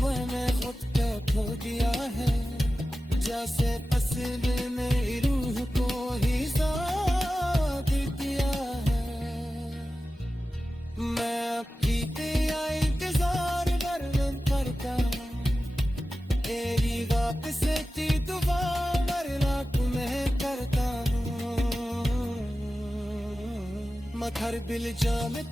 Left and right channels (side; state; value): both; normal; correlation 0.94